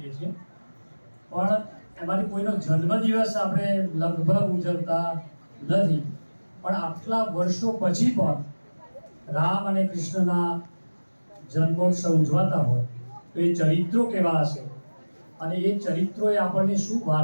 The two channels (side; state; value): both; inverted; correlation -1.00